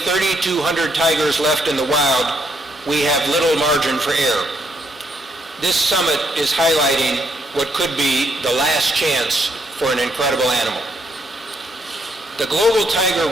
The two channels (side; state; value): both; normal; correlation 0.74